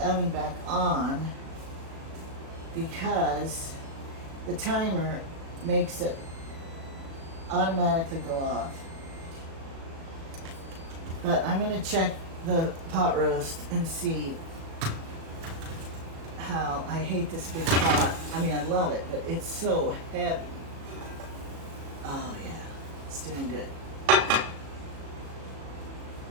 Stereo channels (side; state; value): left; late; 36 ms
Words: oven back on because the timer makes it automatically go off. But I'm gonna check the pot roast and see how I hate this big pot. I mean, I love it, but it's so heavy. Oh yeah, it's doing good.